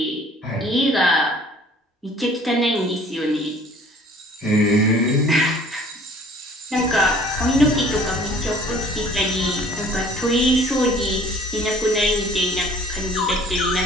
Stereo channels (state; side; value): normal; both; correlation 0.53